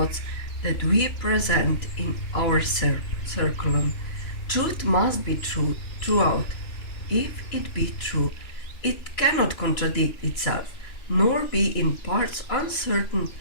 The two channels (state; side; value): late; right; 3.0 ms